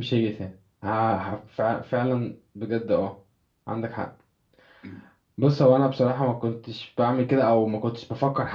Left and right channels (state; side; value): identical; both; correlation 1.00